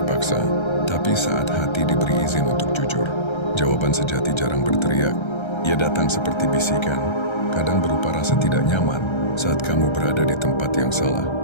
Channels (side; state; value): right; late; 1.3 ms